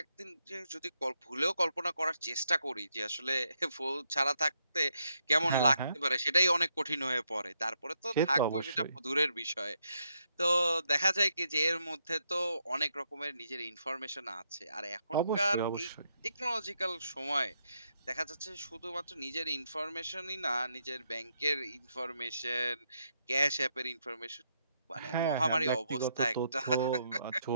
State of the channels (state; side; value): inverted; both; correlation -0.79